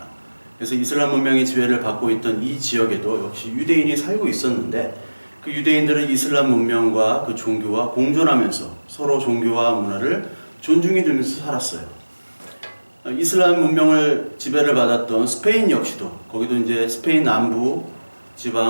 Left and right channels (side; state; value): both; inverted; correlation -1.00